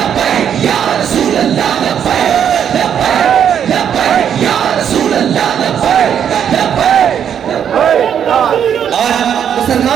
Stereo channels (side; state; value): left; quieter; 8.7 dB